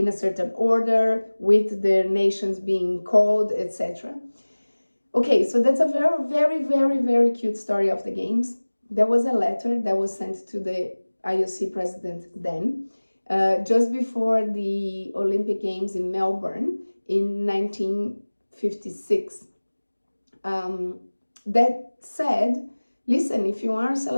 a certain order, with their nations being called, etc. Okay, so that's a very, very, very, very cute story of the games. There was a letter that was sent to the IOC president then, just before the Olympic Games in Melbourne in 1956. That said, listen, if you are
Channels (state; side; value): inverted; both; correlation -1.00